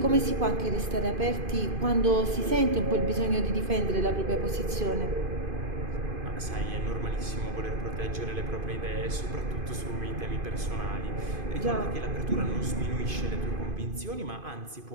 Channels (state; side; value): late; left; 2.5 ms